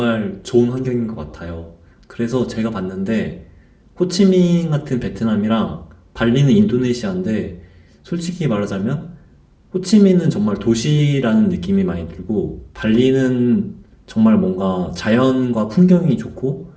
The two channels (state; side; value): identical; both; correlation 1.00